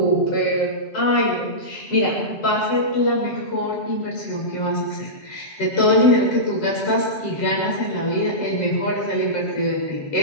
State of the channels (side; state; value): right; late; 7.6 ms